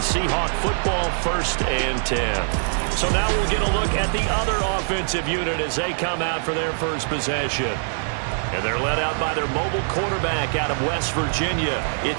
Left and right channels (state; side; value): silent; left; digital silence